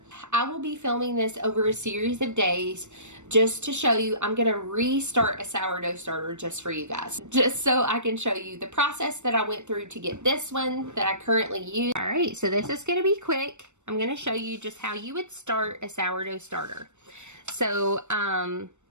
I will be filming this over a series of days just to show you. I'm going to restart a sourdough starter just for you guys, just so I can show you the process that I went through to get this one that I currently use. All right, so this is going to be quick. I'm going to show you just how you would start a sourdough starter. So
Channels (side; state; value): left; late; 0.84 ms